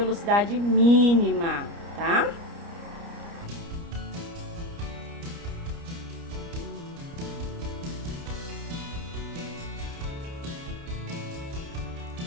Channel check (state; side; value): late; left; 29 ms